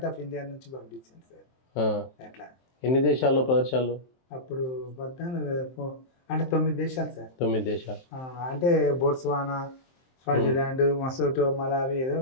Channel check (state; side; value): late; right; 23 ms